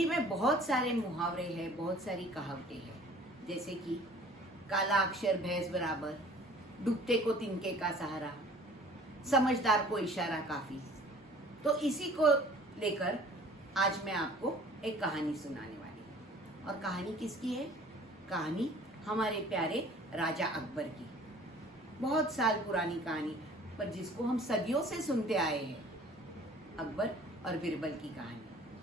में बहुत सारे मुहावरे हैं, बहुत सारी कहावतें हैं, जैसे कि काला अक्षर भैंस बराबर, डूबते को तिनके का सहारा, समझदार को इशारा काफी। तो इसी को लेकर आज मैं आपको एक कहानी सुनाने वाली हूँ। और कहानी किसकी है? कहानी हमारे प्यारे राजा अकबर की। बहुत साल पुरानी कहानी, पर जिसको हम सदियों से सुनते आए हैं, अकबर और बिरबल की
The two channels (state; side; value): normal; both; correlation 0.50